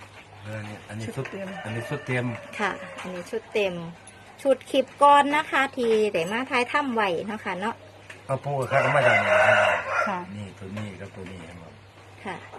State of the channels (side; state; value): both; identical; correlation 1.00